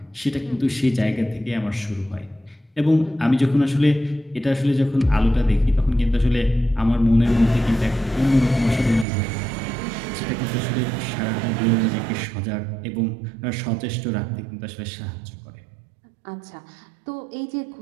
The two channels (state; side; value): drops out; left; at 9.1 s